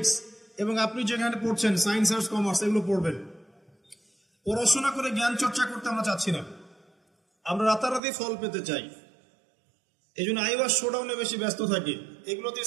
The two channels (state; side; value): drops out; left; at 8.0 s